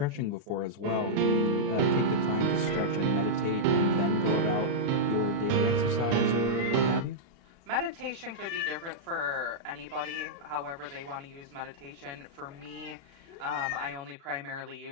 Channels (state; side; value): late; left; 37 ms